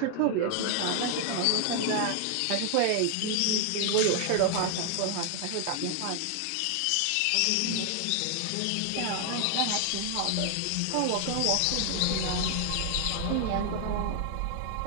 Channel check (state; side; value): different; both; correlation 0.00